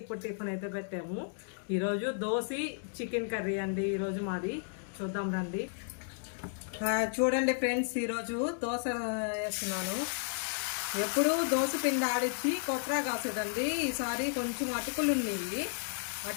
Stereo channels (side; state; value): right; silent; digital silence